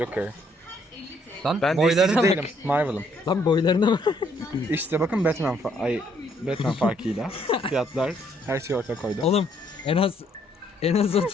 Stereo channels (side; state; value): both; normal; correlation 0.68